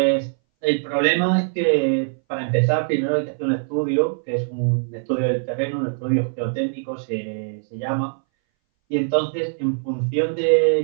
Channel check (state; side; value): silent; left; 61 dB below the other